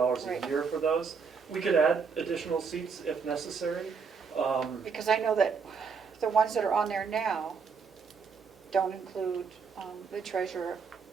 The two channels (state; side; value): quieter; left; 5.6 dB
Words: Right. a year for those. We could add additional seats if necessary. Because I know that the ones that are on there now don't include the treasurer,